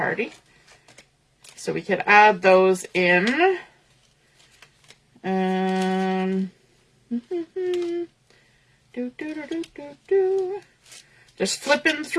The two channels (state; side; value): identical; both; correlation 1.00